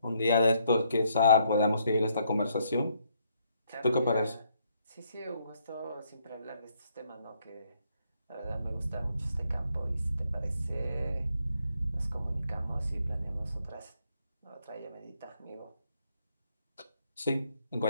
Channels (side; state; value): both; inverted; correlation -0.72